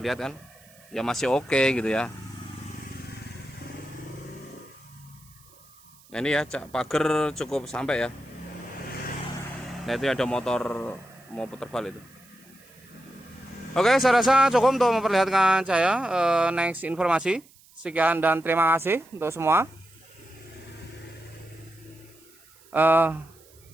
kan? Ya masih oke gitu ya. Nah, ini ya pagar cukup sampai ya. Nah, itu ada motor mau putar balik itu. Oke, saya rasa cukup untuk memperlihatkan saya next informasi. Sekian dan terima kasih untuk semua.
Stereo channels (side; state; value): right; noise; hiss, 27 dB below the sound